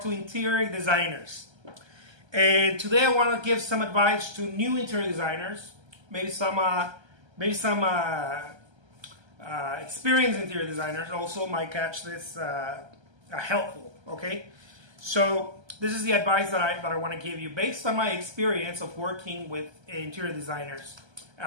to interior designers. And today I want to give some advice to new interior designers, maybe some experienced interior designers also might catch this helpful. Okay, so this is the advice that I want to give you based on my experience of working with interior designers.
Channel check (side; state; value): left; late; 1.3 ms